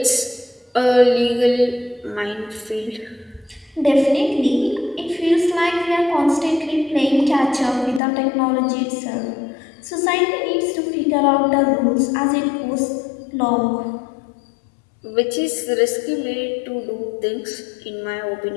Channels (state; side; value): drops out; right; at 8.0 s